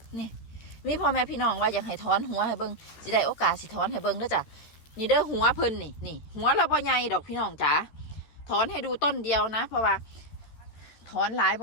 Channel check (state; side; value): late; right; 13 ms